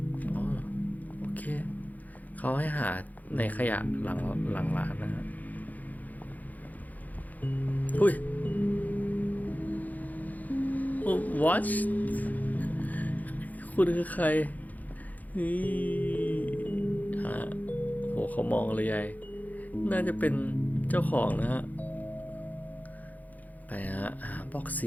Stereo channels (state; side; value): late; right; 0.080 ms